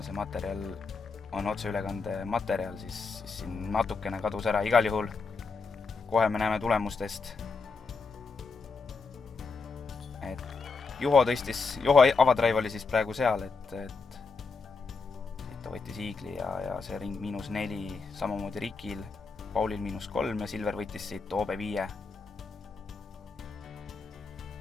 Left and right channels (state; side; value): quieter; right; 4.5 dB